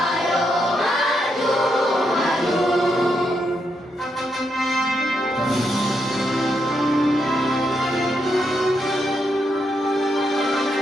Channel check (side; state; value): both; normal; correlation 0.80